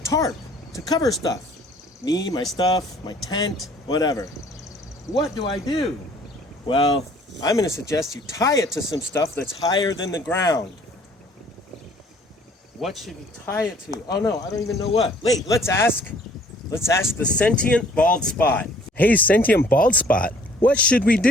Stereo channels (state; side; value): normal; both; correlation 0.57